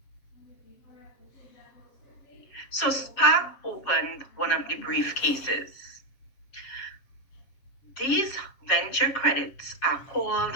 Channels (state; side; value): late; right; 7.4 ms